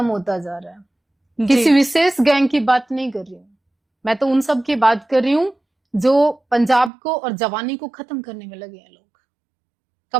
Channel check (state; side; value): drops out; left; at 6.9 s